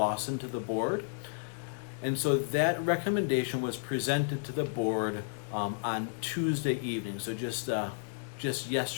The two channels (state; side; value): silent; right; 56 dB below the other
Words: to the board. And so that recommendation was presented to the board on Tuesday evening. So just